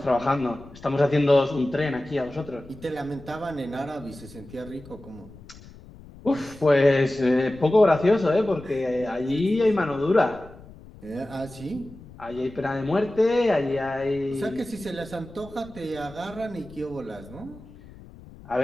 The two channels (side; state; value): left; noise; rumble, 19 dB below the sound